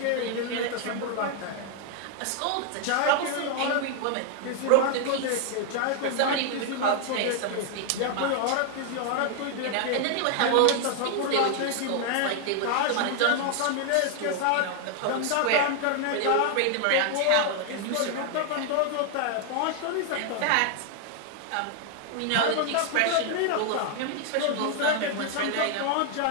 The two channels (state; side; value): different; both; correlation 0.00